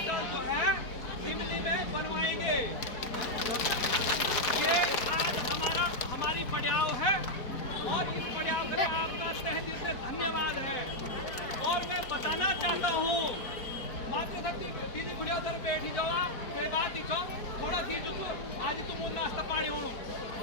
जो है सिमली में बनवाएंगे। ये आज हमारी पड़ाव है और इस पड़ाव के लिए आपका तहे दिल से धन्यवाद है। और मैं बताना चाहता हूँ मातृशक्ति दीदी बुढ़िया उधर बैठी जाओ, कोई बात दिखो थोड़ा सी जो आज तुम नाश्ता पानी हो।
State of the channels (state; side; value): late; right; 4.5 ms